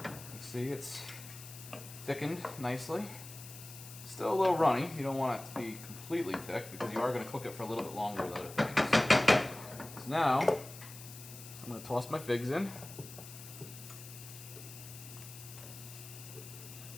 You can see it's thickened nicely. Still a little runny. You don't want it to be completely thick because you are going to cook it for a little bit longer with other things. So now, I'm going to toss my figs in.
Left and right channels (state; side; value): noise; left; hiss, 14 dB below the sound